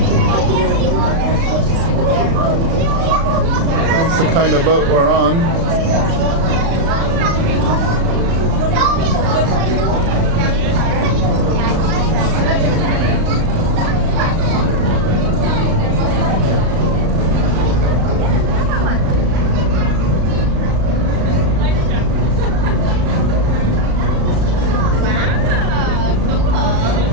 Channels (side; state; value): left; late; 36 ms